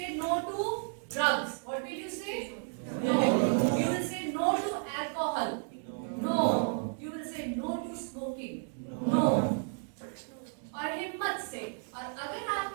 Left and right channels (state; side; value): silent; left; 56 dB below the other